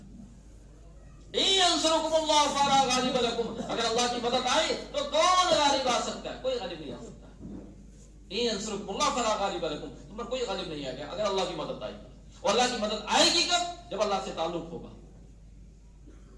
ینصرکم اللہ فلا غالب لکم، اگر اللہ کی مدد آئے تو کون غالب آ سکتا ہے؟ کوئی غالب نہیں آ سکتا۔ ینصرکم اللہ فلا غالب لکم، تم پر کوئی غالب نہیں آئے گا اگر اللہ کی مدد آئے گی۔ اور اللہ کی مدد آئے گی کب؟ جب اللہ سے تعلق ہوگا،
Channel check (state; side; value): identical; both; correlation 1.00